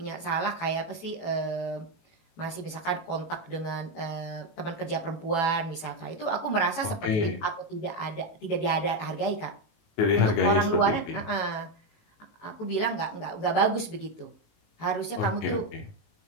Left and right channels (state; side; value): late; right; 18 ms